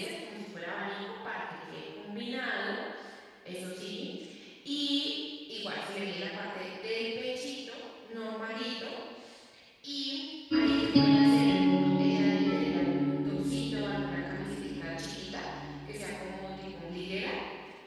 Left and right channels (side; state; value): both; identical; correlation 1.00